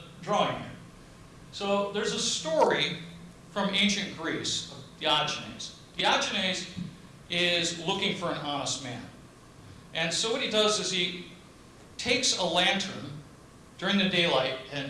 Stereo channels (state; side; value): identical; both; correlation 1.00